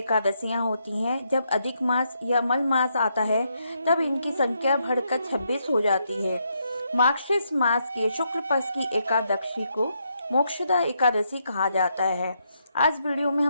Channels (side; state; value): both; inverted; correlation -0.78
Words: होती हैं। जब अधिक मास या मल मास आता है तब इनकी संख्या बढ़कर 26 हो जाती है। मार्गशीर्ष मास के शुक्ल पक्ष की एकादशी को मोक्षदा एकादशी कहा जाता है। आज वीडियो में